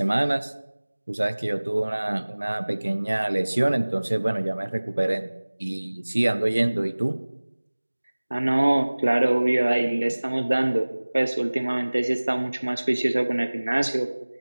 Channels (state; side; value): inverted; both; correlation -1.00